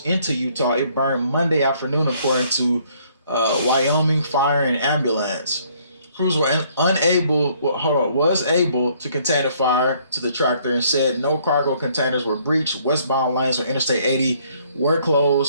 into Utah. It burned Monday afternoon, according to Wyoming Fire and Ambulance. Crews were was able to contain the fire to the tractor and said no cargo containers were breached. Westbound lanes on Interstate 80 were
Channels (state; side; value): inverted; both; correlation -0.65